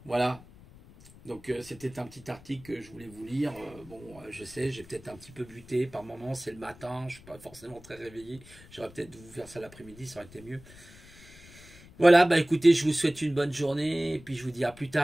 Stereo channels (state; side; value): noise; left; rumble, 21 dB below the sound